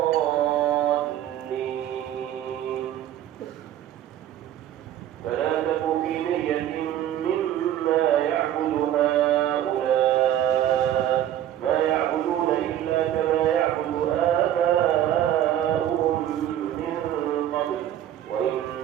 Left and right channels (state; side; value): quieter; left; 11.6 dB